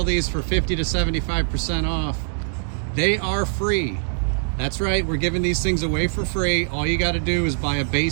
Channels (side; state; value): left; silent; digital silence